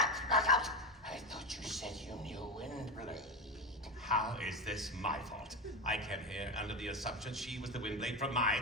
knockout! I thought you said you knew Windblade. How is this my fault? I came here under the assumption she was the Windblade from my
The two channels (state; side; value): normal; both; correlation 0.17